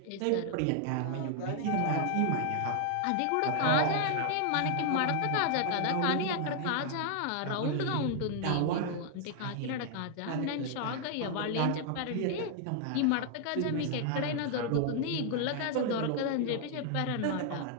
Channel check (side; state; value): both; different; correlation 0.00